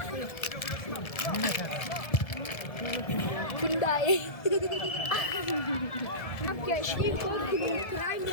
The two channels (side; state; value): right; late; 1.7 ms